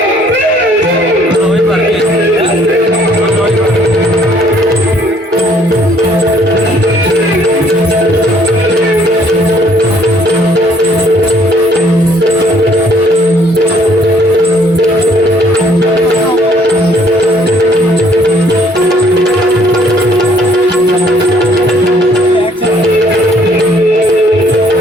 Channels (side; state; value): both; normal; correlation 0.62